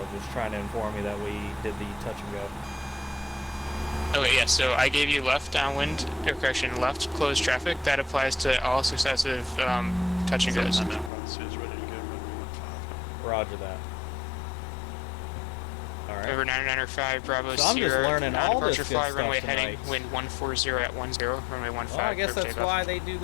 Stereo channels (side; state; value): right; drops out; at 11.1 s